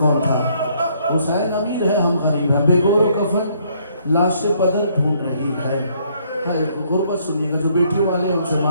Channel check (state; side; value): inverted; both; correlation -0.67